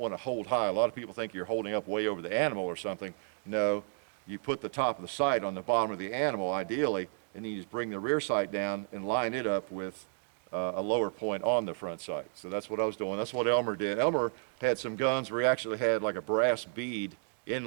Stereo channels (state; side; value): silent; left; 56 dB below the other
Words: to hold high. A lot of people think you're holding up way over the animal or something. No, you put the top of the sight on the bottom of the animal, ideally, and then you just bring the rear sight down and line it up with a lower point on the front sight. So that's what I was doing. That's what Elmer did. Elmer had some guns where he actually had like a brass bead